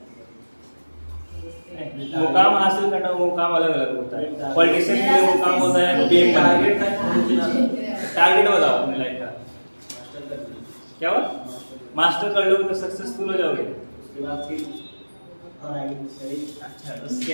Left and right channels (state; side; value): inverted; both; correlation -1.00